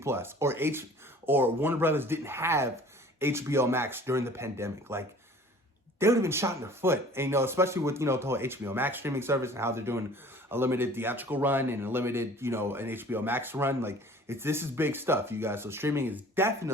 or Warner Brothers didn't have HBO Max during the pandemic. Like, they would have been shot in their foot. And, especially with, the whole HBO Max streaming service and how they're doing a limited theatrical run and a limited, an HBO Max run. Like, this is big stuff, you guys. So streaming is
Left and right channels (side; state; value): both; normal; correlation 0.48